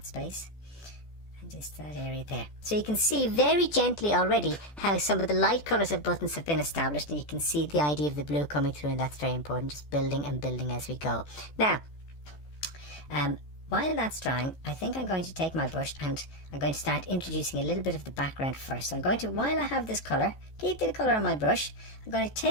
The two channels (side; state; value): right; late; 14 ms